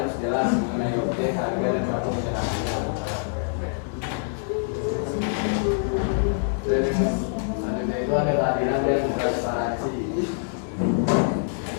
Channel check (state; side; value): silent; right; digital silence